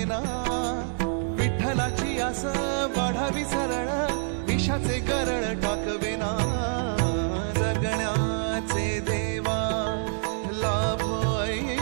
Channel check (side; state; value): left; silent; digital silence